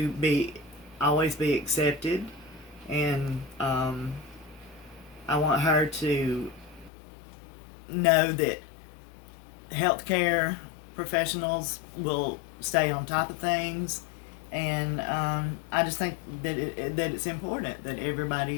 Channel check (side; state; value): right; drops out; at 6.9 s